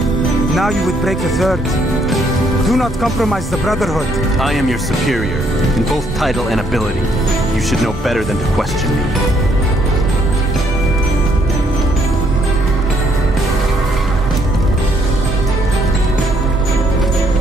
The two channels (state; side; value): normal; both; correlation 0.69